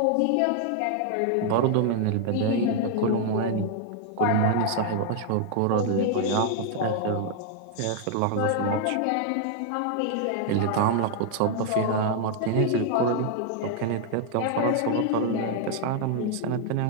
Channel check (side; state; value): both; different; correlation 0.00